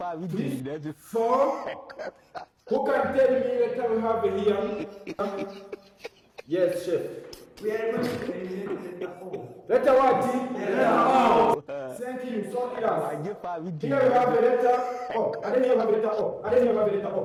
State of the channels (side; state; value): both; identical; correlation 1.00